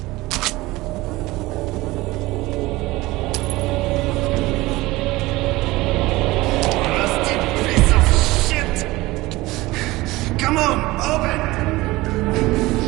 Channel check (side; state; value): left; quieter; 19.8 dB